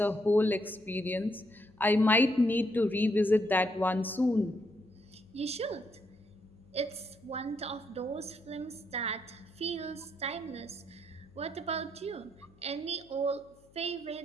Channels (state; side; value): noise; left; hum, 29 dB below the sound